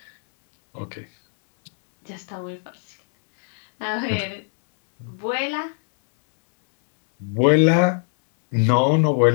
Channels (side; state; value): right; silent; 65 dB below the other